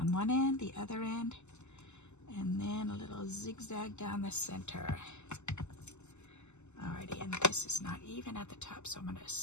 one end, the other end, and then a little zigzag down the center. Alrighty, and this is not even at the top, so I'm going to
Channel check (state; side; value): late; right; 0.83 ms